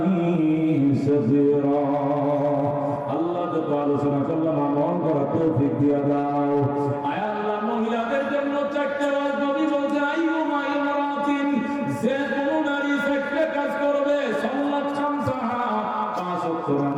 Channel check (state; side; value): identical; both; correlation 1.00